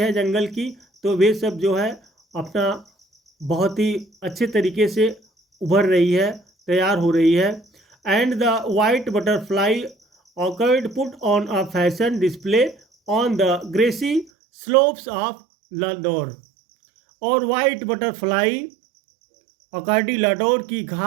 जंगल की। तो वे सब जो है अपना बहुत ही अच्छे तरीके से उभर रही है, तैयार हो रही है। एंड द वाइट बटरफ्लाई ऑकर्ड put on a fashion display on the grassy slopes of Landour. और वाइट बटरफ्लाई अकार्डी लाडोर की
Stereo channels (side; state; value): left; drops out; at 14.3 s